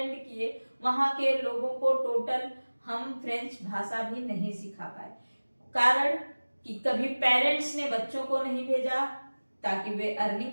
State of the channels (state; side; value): inverted; both; correlation -1.00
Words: किए वहां के लोगों को टोटल हम फ्रेंच भाषा भी नहीं सिखा पाए। कारण कि कभी पेरेंट्स ने बच्चों को नहीं भेजा ताकि वे